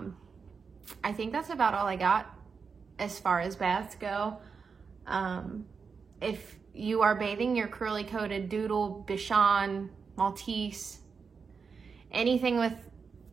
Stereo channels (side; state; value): left; quieter; 5.5 dB